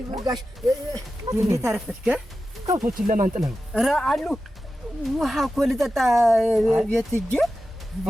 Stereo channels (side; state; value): both; normal; correlation 0.93